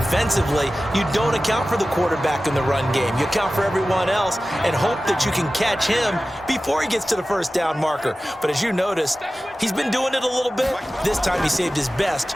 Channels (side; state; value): both; normal; correlation 0.96